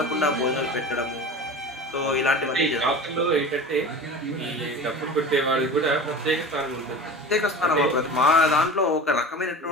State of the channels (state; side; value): normal; both; correlation 0.34